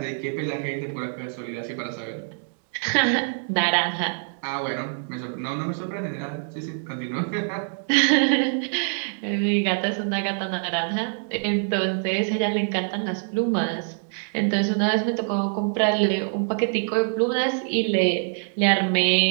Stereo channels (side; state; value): left; silent; 62 dB below the other